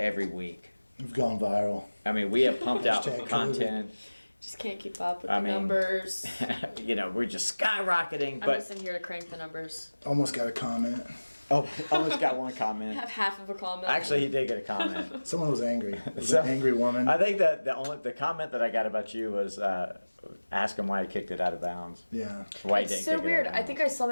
week. We've gone viral. I mean, we have pumped out Hashtag content. Just can't keep up with I the mean, numbers. You know, we're just skyrocketing. I'm But just in here to crank the numbers. Almost got a comment. oh, almost got one I comment. have half of a comment. Actually, he did get a comment. Someone was angry. It was So, an angry woman. I think that the comment that I got about you was ask him why he kicked it out of bounds. Yeah. Why he It's didn't so kick weird. It out of I bounds. think I saw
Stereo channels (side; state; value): both; inverted; correlation -1.00